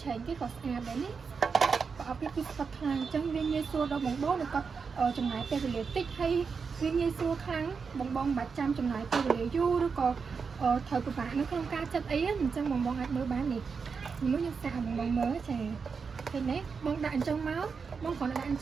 ឆែកគេក៏ស្អាតដែរនេះប្រអប់នេះគឺស្វិតខ្លាំងអញ្ចឹងវាងាយស្រួលដល់បងនៅគាត់ចំណាយពេលវេលាតិចហើយវាងាយស្រួលខ្លាំងបងមិនបាច់ចាំចំណាយពេលវេលាយូរឬក៏ត្រូវពិបាកនៅក្នុងការចិត្តអីអញ្ចឹងបងអាចមើលបាននេះមួយខ្ញុំសាកបងមើលចាឃើញទេបងដាក់អញ្ចឹងមកបងគ្រាន់តែដាក់អញ្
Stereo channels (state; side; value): quieter; left; 5.5 dB